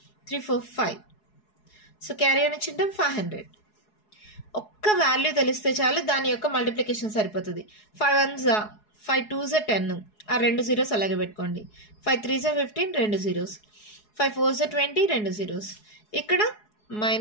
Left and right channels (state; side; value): late; right; 4.7 ms